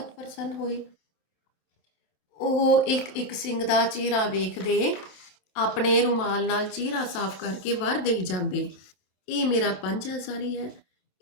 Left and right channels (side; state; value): right; late; 27 ms